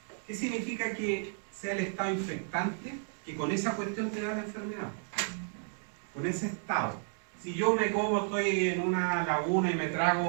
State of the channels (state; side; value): silent; left; 56 dB below the other